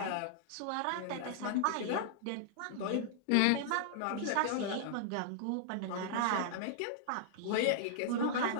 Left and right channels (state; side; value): different; both; correlation -0.01